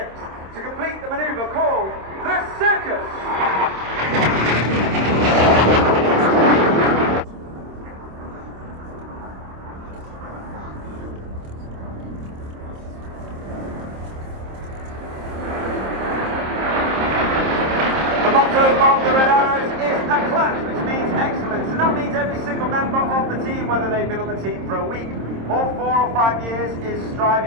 To complete the manoeuvre called the Circus. The motto of the Red Arrows is a class, which means excellence, and that means every single member of the team, whether they've been on the team for a week or 4 or 5 years, is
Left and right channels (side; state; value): left; late; 26 ms